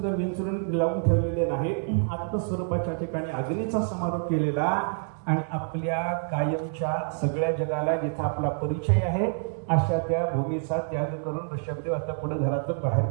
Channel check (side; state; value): left; silent; 60 dB below the other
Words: विंचरून लावून ठेवलेले नाही, आत्मस्वरूपाच्या ठिकाणी अग्नीचा समारोप केलेला. आणि आपल्या कायमच्या सगळ्या जगाला जिथे आपला परिचय आहे अशा त्या भूमीचा त्याग करून ऋषभदेव आता पुढे घरातून बाहेर